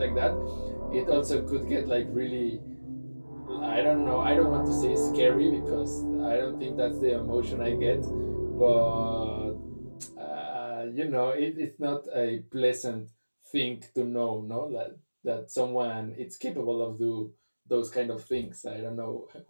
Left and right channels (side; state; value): both; inverted; correlation -1.00